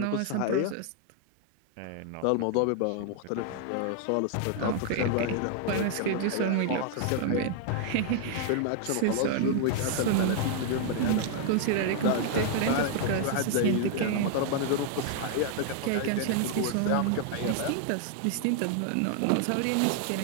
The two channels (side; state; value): both; different; correlation 0.00